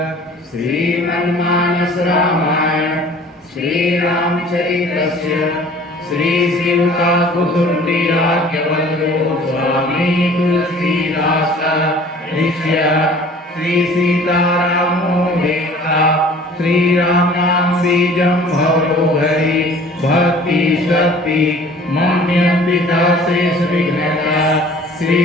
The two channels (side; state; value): both; normal; correlation 0.48